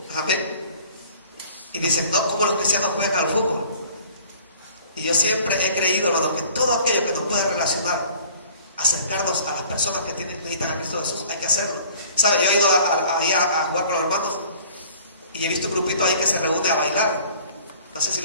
Amén. Y dicen, no, ¿cómo los cristianos juegan al fútbol? Y yo siempre he creído, hermano, que todo aquello que nos puede relacionar, acercarnos a las personas que necesitan a Cristo Jesús, hay que hacerlo. ¿Sabe? Yo he ido ahí a jugar con los hermanos y he visto un grupito ahí que se reúne a bailar. No sé si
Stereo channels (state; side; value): inverted; both; correlation -0.50